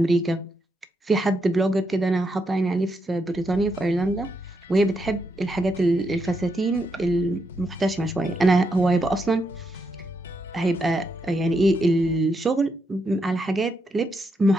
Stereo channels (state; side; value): normal; both; correlation 0.81